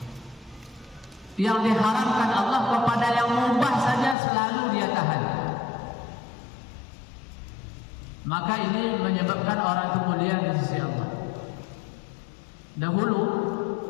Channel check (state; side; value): drops out; right; at 4.2 s